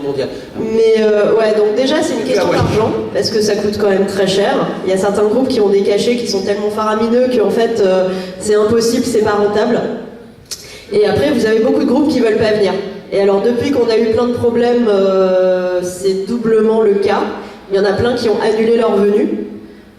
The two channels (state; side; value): identical; both; correlation 1.00